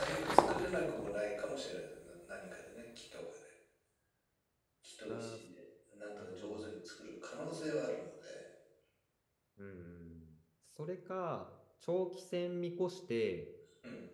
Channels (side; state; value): both; identical; correlation 1.00